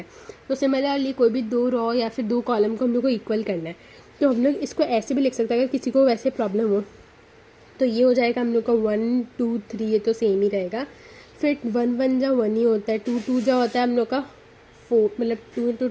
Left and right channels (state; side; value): identical; both; correlation 1.00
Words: तो सिमिलरली कोई भी 2 रॉ या फिर 2 कॉलम को हम लोग को इक्वल करना है। तो हम लोग इसको ऐसे भी लिख सकते हैं, अगर किसी को वैसे प्रॉब्लम हो तो ये हो जाएगा हम लोग का 1 2 3, ये तो सेम ही रहेगा। फिर 1 1 जा 1 ही होता है, 2 2 जा होता है हम लोग का 4, मतलब 2 इंटू